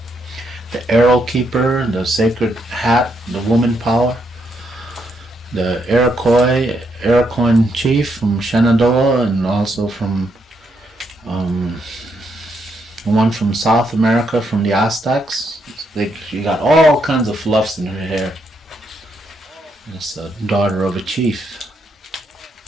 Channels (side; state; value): both; normal; correlation 0.77